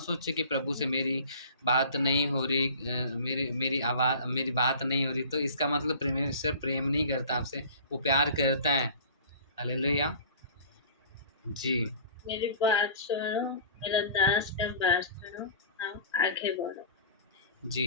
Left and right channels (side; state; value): both; inverted; correlation -0.43